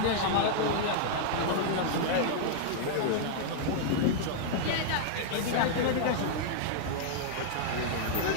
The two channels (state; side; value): different; both; correlation -0.01